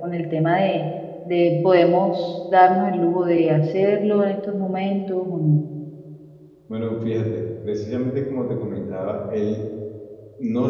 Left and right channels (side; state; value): both; identical; correlation 1.00